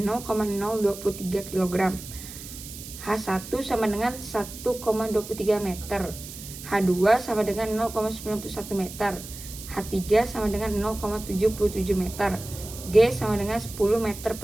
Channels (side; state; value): right; noise; hiss, 13 dB below the sound